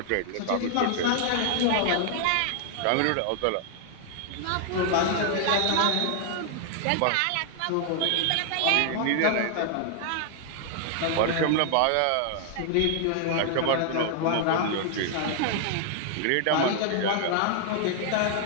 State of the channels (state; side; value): different; both; correlation 0.00